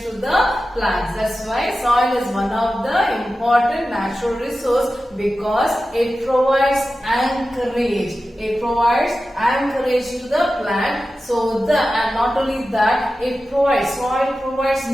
to the plants. That's why soil is one of the important natural resource because it provides anchorage. It provides anchorage to the plant. So and not only that, soil provides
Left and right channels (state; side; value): normal; both; correlation 0.93